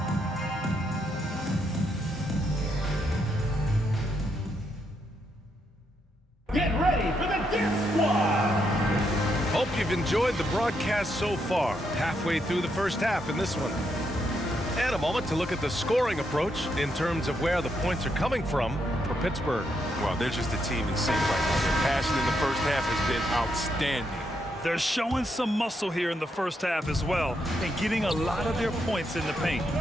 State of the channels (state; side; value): normal; both; correlation 0.79